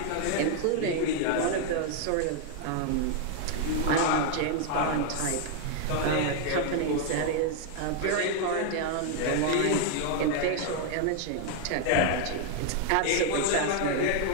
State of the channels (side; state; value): both; different; correlation 0.00